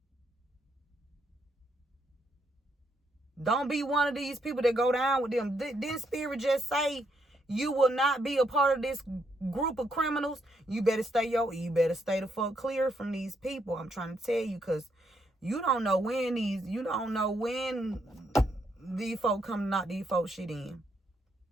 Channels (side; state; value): both; normal; correlation 0.76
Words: Don't be one of these people that go down with them. Didn't Spirit just say you will not be a part of this group of criminals? You better stay the fuck clear from these people. I'm trying to tell you, because you don't know when these folk come to knock these folk shit in